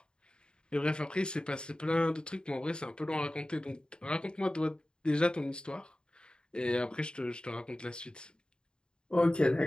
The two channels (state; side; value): late; right; 0.050 ms